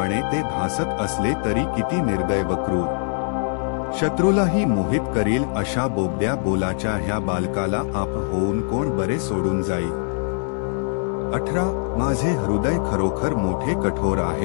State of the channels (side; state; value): right; silent; 64 dB below the other